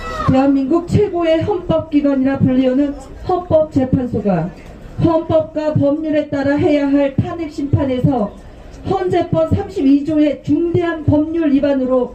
대한민국 최고의 헌법기관이라 불리우는 헌법재판소가 헌법과 법률에 따라 해야 할 탄핵심판에서 헌재법 32조의 중대한 법률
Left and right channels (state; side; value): identical; both; correlation 1.00